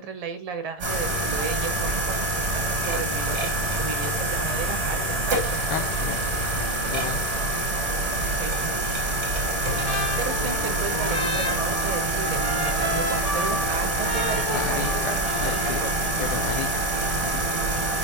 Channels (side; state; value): left; late; 1.7 ms